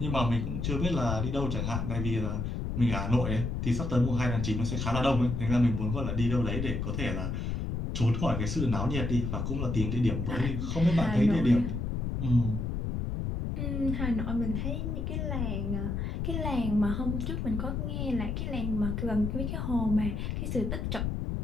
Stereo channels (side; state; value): left; noise; rumble, 2 dB below the sound